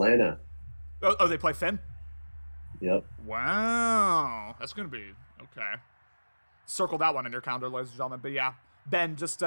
Oh, they play Finn? Yep. Wow. That's going to be okay. Circle that one in your calendar, ladies and gentlemen. But yeah, Ben, just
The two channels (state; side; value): inverted; both; correlation -1.00